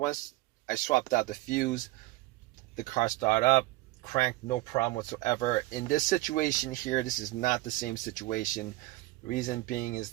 I swapped out the fuse, the car started up, cranked, no problem whatsoever. In this situation here, this is not the same situation. Reason being is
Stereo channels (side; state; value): left; quieter; 18.7 dB